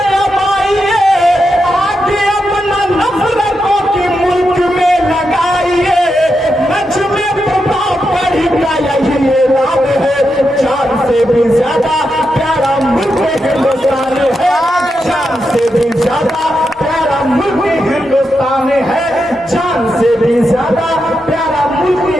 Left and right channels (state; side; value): normal; both; correlation 0.86